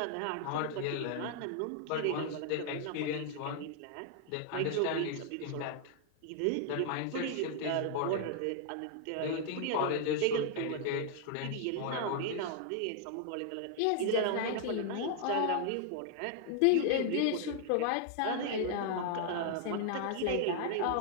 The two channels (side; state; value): both; different; correlation 0.00